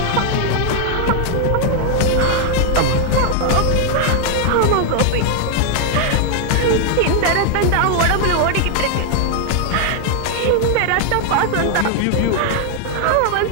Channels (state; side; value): different; both; correlation 0.00